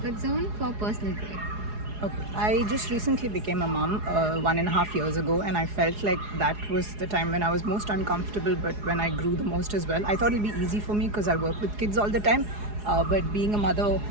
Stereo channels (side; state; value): left; late; 4.8 ms